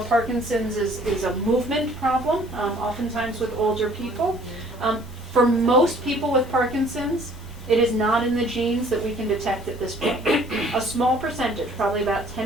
is a movement problem, oftentimes with older people. For most people with Parkinson's, it is not in the genes that we can detect at this point. A small percentage, probably about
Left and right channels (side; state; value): both; normal; correlation 0.56